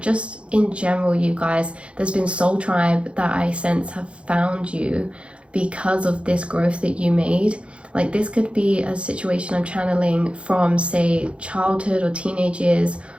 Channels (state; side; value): late; left; 0.059 ms